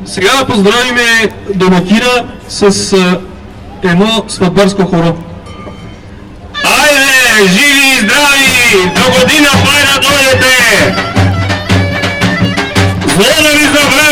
Сега да поздравим домакина с едно сватбарско хоро. Айде, живи и здрави! До година пай да дойдете! Зло да ви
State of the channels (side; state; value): both; identical; correlation 1.00